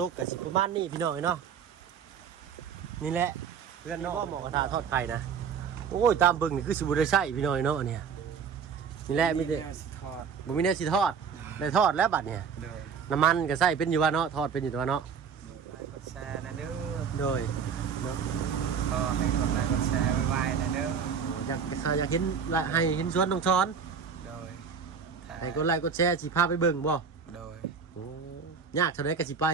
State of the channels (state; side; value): quieter; left; 6.5 dB